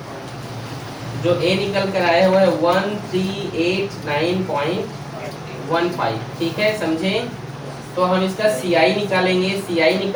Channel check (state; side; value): identical; both; correlation 1.00